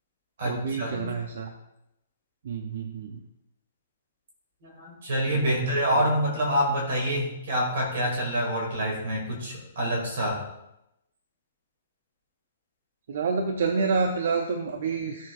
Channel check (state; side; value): inverted; both; correlation -0.60